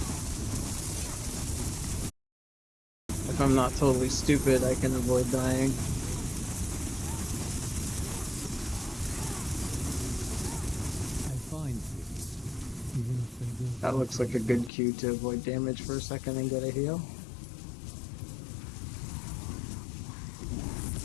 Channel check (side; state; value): right; drops out; at 14.7 s